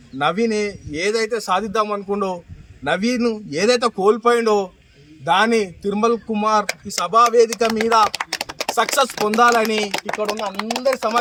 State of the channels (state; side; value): identical; both; correlation 1.00